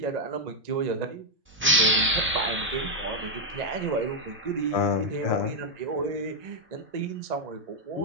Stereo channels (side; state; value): both; normal; correlation -0.01